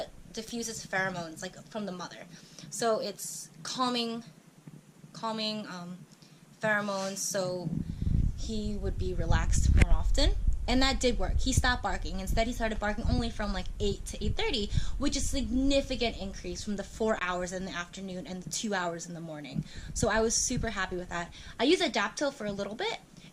diffuses pheromones like from the mother. So it's calming pheromones, so he would be relaxed more often. And that did work. He stopped barking. Instead, he started barking only from like 8 to 8:30, which is a significant increase from the 4 hours in the afternoon and the 2 hours in the morning. So I was super happy with that. I used Adaptil for a little bit,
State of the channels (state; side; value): identical; both; correlation 1.00